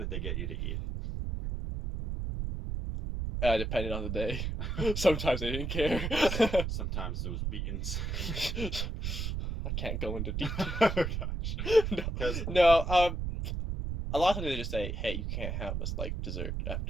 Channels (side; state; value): right; noise; rumble, 2 dB below the sound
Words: they get you to eat? Depending on the day. Sometimes they didn't care. Sometimes it was beatings. I can't go into detail. Oh, gosh. No, a lot of times they just say, hey, you can't have this, like, dessert